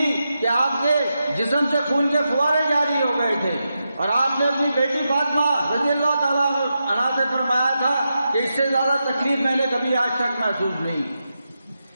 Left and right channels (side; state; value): both; inverted; correlation -0.88